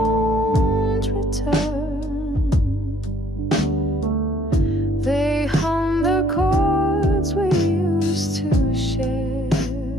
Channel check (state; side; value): normal; both; correlation 0.61